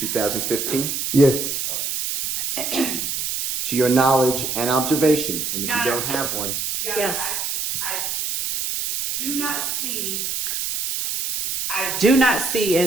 Yes. All right. To your knowledge and observation, and if you don't have one. Yes. I do not see. Do not see,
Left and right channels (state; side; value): noise; right; hiss, 2 dB below the sound